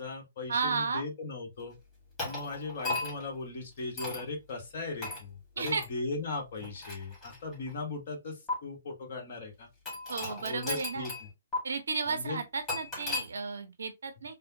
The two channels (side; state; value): both; inverted; correlation -0.58